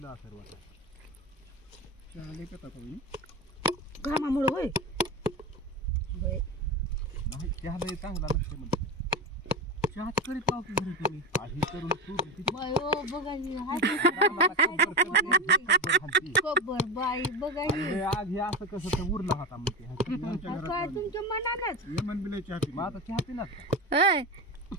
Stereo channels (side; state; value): both; normal; correlation 0.21